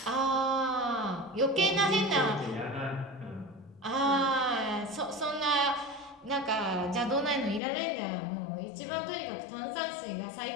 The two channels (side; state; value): right; drops out; at 7.6 s